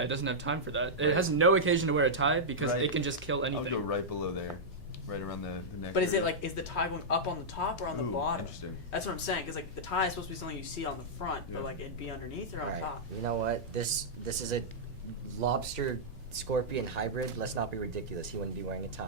It doesn't have time for that. It has no occasion to wear a tie because Right. it can just kill I'll anything. go right below there, right around the neck. But is it area. like is the tie going up on the top or on the Ooh, bottom? Interesting. That's what I'm saying. Because like the tie is supposed to be something you see on the front, but Yeah. like it'd be underneath or on All right, top. you know what? This is a lobster scorpion hybrid. Let's not be ridiculous. He wouldn't be wearing a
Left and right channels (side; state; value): right; noise; hum, 20 dB below the sound